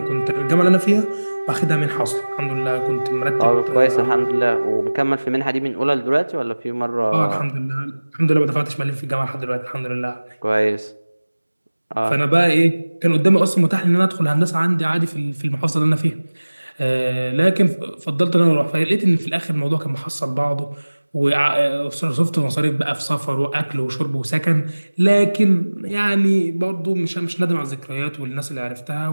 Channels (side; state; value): both; inverted; correlation -1.00